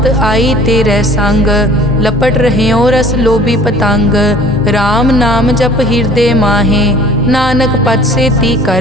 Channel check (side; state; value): both; normal; correlation 0.49